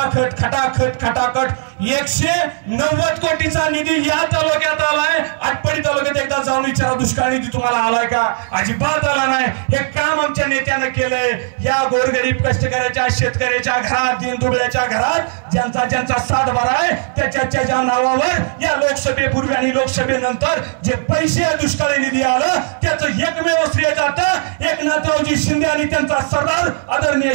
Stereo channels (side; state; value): left; silent; digital silence